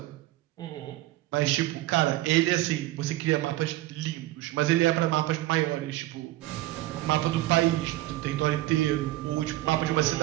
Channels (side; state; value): left; quieter; 16.5 dB